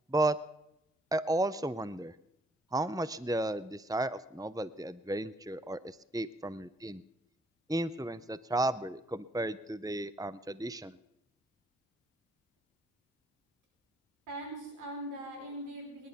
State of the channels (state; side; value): normal; both; correlation 0.68